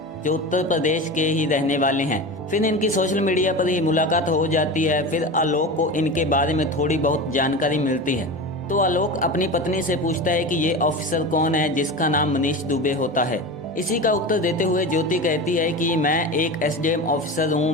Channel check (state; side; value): normal; both; correlation 0.27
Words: जो उत्तर प्रदेश के ही रहने वाले हैं। फिर इनकी सोशल मीडिया पर ही मुलाकात हो जाती है। फिर आलोक को इनके बारे में थोड़ी बहुत जानकारी मिलती है तो आलोक अपनी पत्नी से पूछता है कि ये ऑफिसर कौन है जिसका नाम मनीष दुबे होता है। इसी का उत्तर देते हुए ज्योति कहती है कि मैं एक एसडीएम ऑफिसर हूँ,